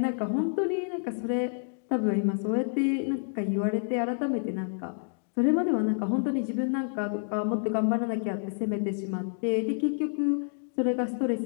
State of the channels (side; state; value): right; silent; digital silence